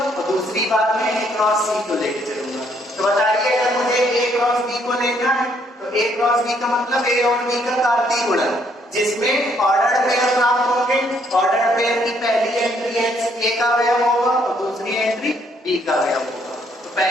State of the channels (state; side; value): normal; both; correlation 0.68